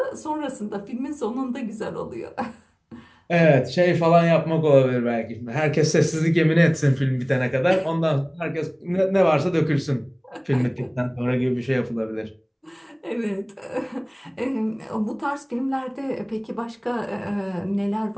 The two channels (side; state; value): both; identical; correlation 1.00